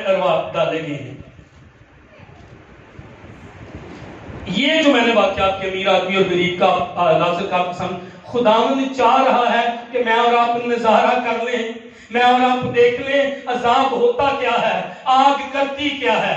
ارواح ڈالے گئے ہیں؟ یہ جو میں نے واقعات کے امیر آدمی اور غریب کا لازر کا قسم، خداوند چاہ رہا ہے کہ میں اور آپ نظارہ کر لیں، میں اور آپ دیکھ لیں عذاب ہوتا کیا ہے، آگ کرتی کیا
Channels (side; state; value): both; identical; correlation 1.00